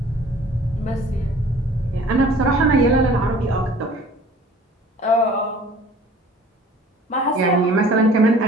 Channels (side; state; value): both; normal; correlation 0.49